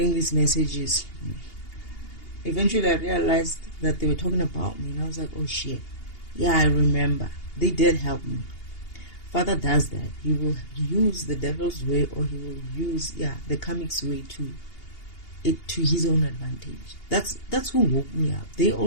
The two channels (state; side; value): late; right; 2.8 ms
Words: these messages? Eventually I realized that they were talking about me, and I was like, oh shit. Yeah, I remember. They did help me. Father does that. He will use the devil's way, or he will use the comic's way to his own advantage. That's who woke me up. They